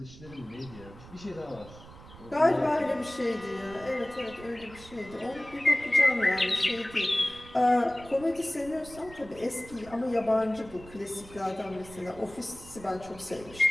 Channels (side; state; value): right; noise; rumble, 18 dB below the sound